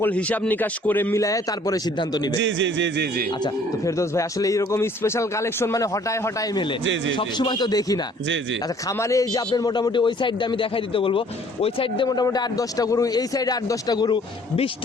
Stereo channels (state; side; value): normal; both; correlation 0.58